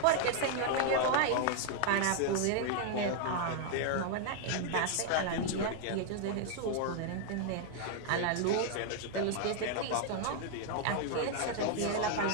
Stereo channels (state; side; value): different; both; correlation 0.00